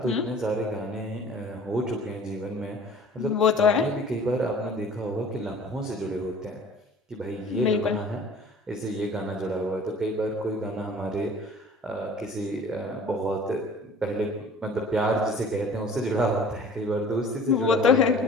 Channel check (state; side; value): normal; both; correlation 0.47